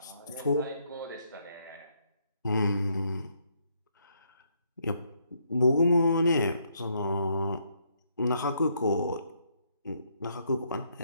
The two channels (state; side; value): inverted; both; correlation -0.73